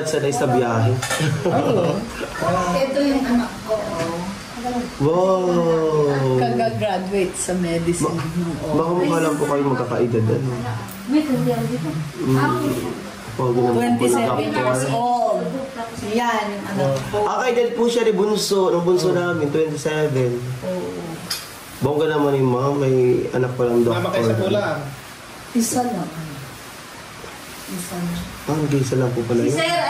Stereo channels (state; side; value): identical; both; correlation 1.00